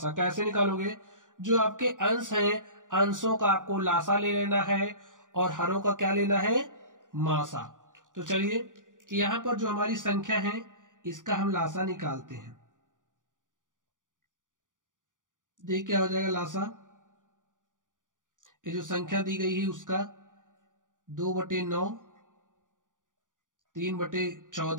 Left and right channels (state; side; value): late; left; 0.88 ms